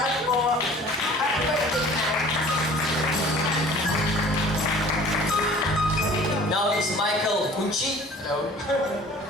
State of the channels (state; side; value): normal; both; correlation 0.47